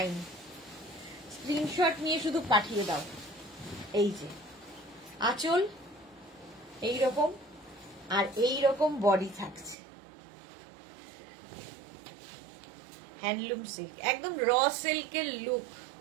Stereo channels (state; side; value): drops out; left; at 9.8 s